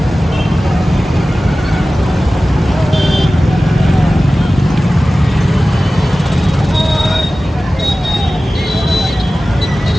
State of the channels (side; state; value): both; normal; correlation 0.96